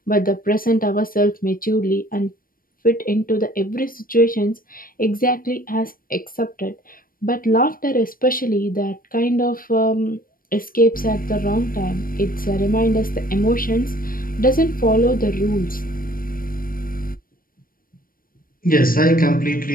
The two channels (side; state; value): right; late; 0.41 ms